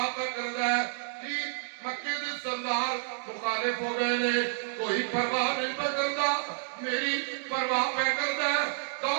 پہ کرنا ہے جی مکے دے سردار مخالف ہو گئے نے کوئی پرواہ نہیں پہ کرتا میری پرواہ پہ کرنا ہے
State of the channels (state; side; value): silent; left; digital silence